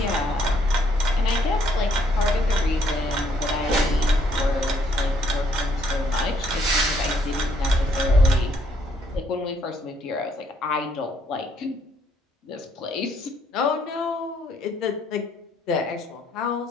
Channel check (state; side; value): normal; both; correlation 0.69